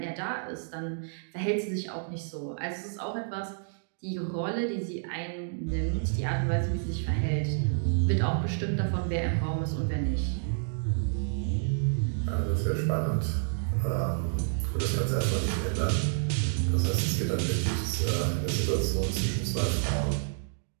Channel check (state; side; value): silent; left; digital silence